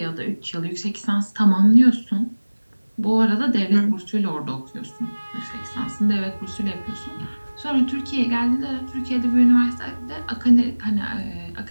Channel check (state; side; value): inverted; both; correlation -1.00